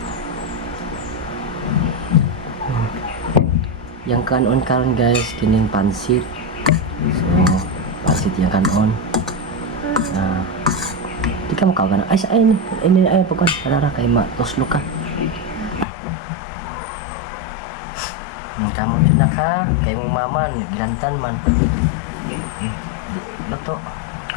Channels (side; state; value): right; drops out; at 15.9 s